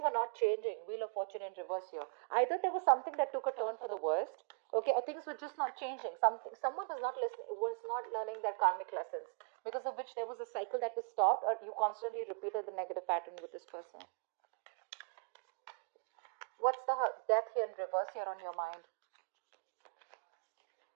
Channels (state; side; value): quieter; left; 39.9 dB